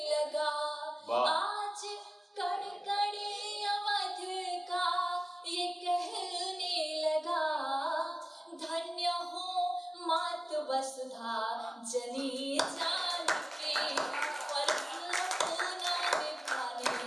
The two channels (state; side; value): normal; both; correlation 0.96